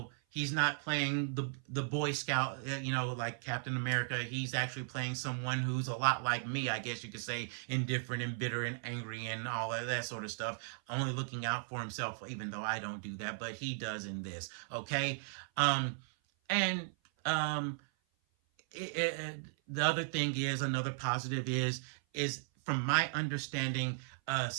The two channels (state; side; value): silent; left; 53 dB below the other